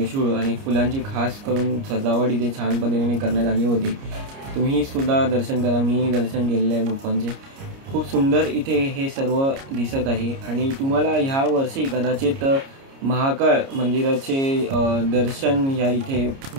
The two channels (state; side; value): late; left; 29 ms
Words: आणि फुलांची खास करून सजावट इथे छान पद्धतीने करण्यात आली होती. तुम्ही सुद्धा दर्शन करा, मीही दर्शन केलेले आहे गुप्पांचे. खूप सुंदर इथे हे सर्व दिसत आहे. आणि तुम्हाला ह्या वर्षी कदाचित महाकाळ मंदिराचे दर्शन या इथे